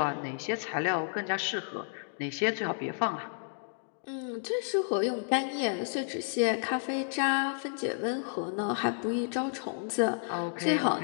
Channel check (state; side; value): silent; right; digital silence